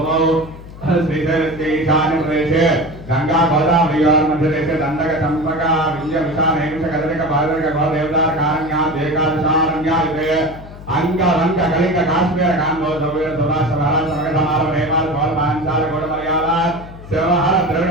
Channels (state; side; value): noise; left; hum, 16 dB below the sound